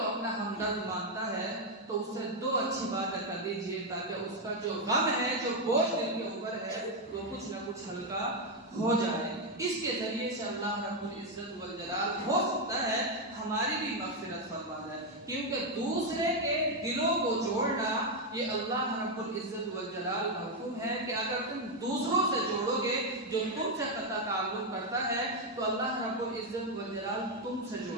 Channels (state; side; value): normal; both; correlation 0.03